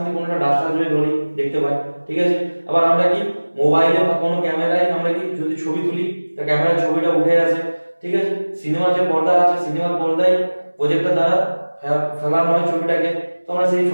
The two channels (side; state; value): both; inverted; correlation -1.00